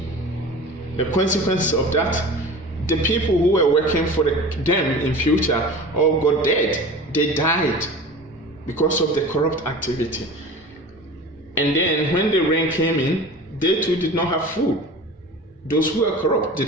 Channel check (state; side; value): normal; both; correlation 0.37